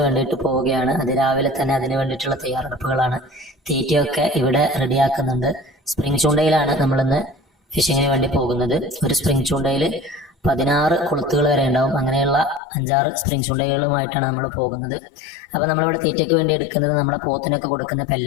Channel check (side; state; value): right; drops out; at 12.6 s